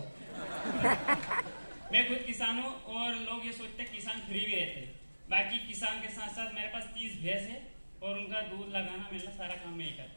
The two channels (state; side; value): inverted; both; correlation -1.00